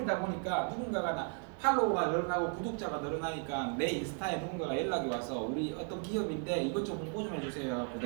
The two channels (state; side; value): quieter; left; 40.0 dB